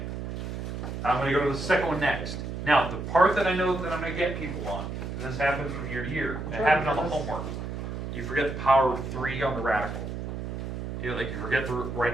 I'm going to go to the second one next. Now, the part that I know that I'm going to get people on, and this happens from year to year, it happened on the homework. You forget the power of 3 on the radical. You forget to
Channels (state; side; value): noise; right; hum, 5 dB below the sound